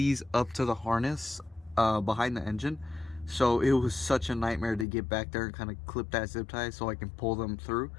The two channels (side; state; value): right; drops out; at 4.9 s